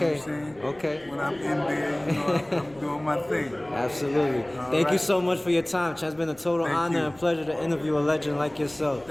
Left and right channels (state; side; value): noise; left; rumble, 27 dB below the sound